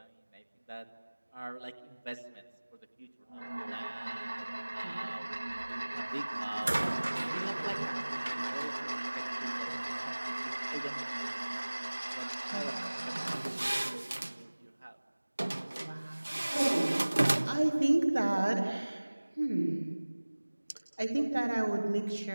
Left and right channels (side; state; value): both; inverted; correlation -1.00